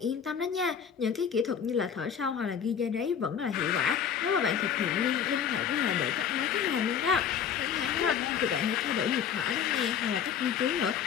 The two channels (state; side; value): quieter; right; 7.9 dB